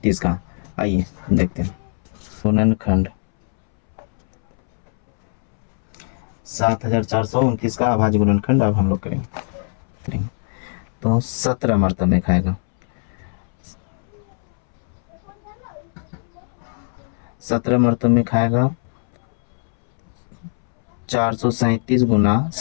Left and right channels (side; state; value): right; silent; 65 dB below the other